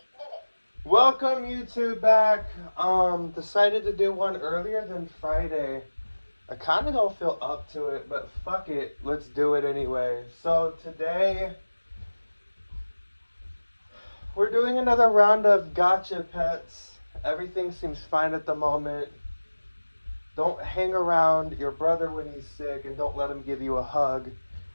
minutes. Welcome YouTube back. Decided to do one earlier than Friday. I kind of don't feel up to it, but fuck it. Let's do it anyway. So today, we're doing another round of gotcha pets. Everything seems fine at the moment. Don't hang around your brother when he's sick and don't let him give you a hug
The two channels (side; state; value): both; inverted; correlation -1.00